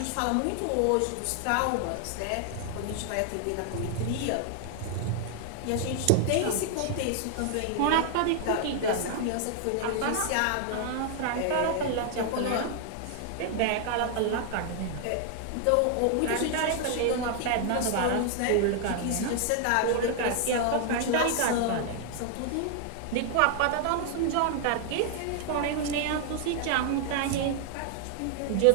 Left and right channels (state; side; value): different; both; correlation 0.00